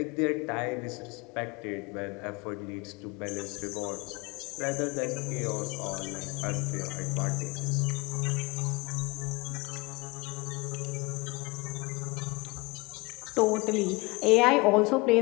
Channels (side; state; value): right; quieter; 25.3 dB